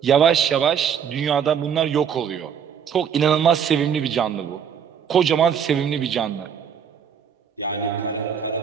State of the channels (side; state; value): left; quieter; 7.9 dB